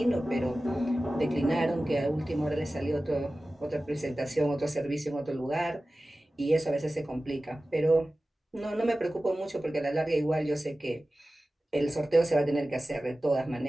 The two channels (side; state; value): both; normal; correlation 0.96